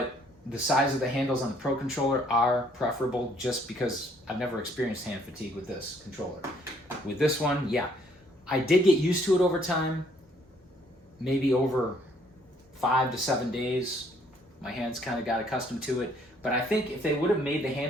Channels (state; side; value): normal; both; correlation 0.65